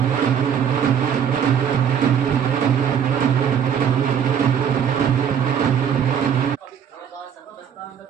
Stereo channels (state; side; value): quieter; left; 8.2 dB